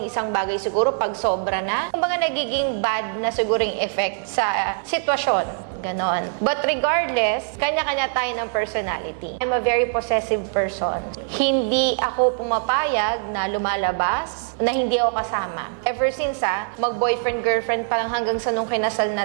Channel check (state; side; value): silent; left; digital silence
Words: isang bagay siguro pag sobra na. Kumbaga nagiging bad na siguro yung effect sa sitwasyon. Ganon. But regardless, kanya-kanya tayo ng personality. I'm a very possessive person. Hindi ako pumapayag na lumalabas na hindi ako kasama. Ever since mag-boyfriend, girlfriend pa lang hanggang sa nung kinasal